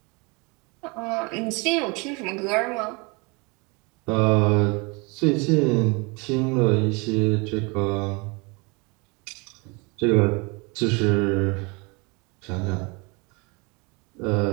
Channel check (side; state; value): left; quieter; 29.0 dB